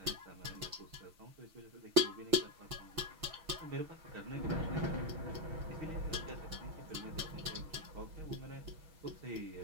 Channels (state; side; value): late; left; 6.3 ms